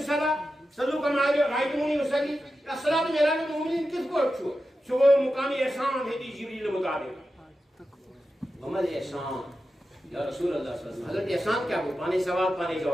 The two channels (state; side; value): normal; both; correlation 0.91